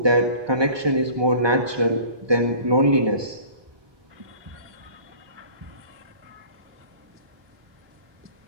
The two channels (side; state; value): left; late; 1.2 ms